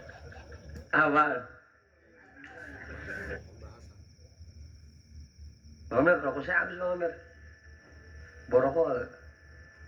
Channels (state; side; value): identical; both; correlation 1.00